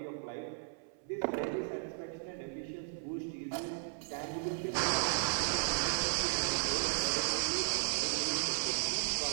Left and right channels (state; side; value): silent; left; 54 dB below the other